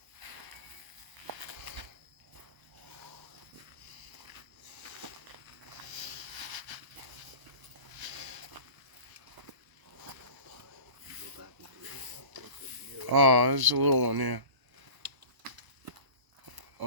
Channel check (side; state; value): left; late; 1.0 ms